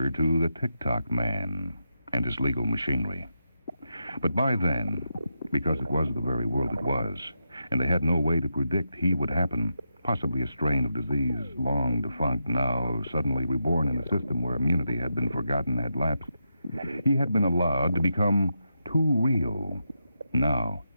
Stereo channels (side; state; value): both; inverted; correlation -0.86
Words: to the Tock man and his legal machinery. But by then, because it was the very world it was, and they had no way to predict he would happen, possibly a strain of disease long defunct, now suddenly reborn in a system where immunity had been forgotten, had lapsed, he had been allowed to become too real. Now